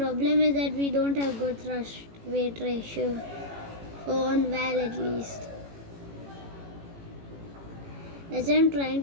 is that we don't have good thrust weight ratio for on Val at least. As I'm trying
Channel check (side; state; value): left; late; 18 ms